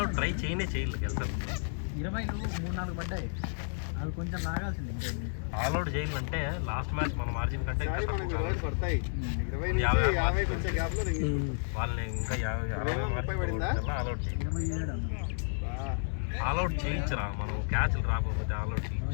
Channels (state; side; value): silent; right; digital silence